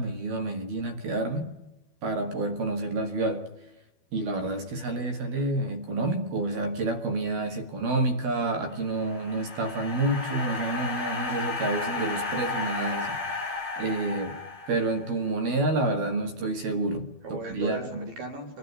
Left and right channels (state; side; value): late; left; 12 ms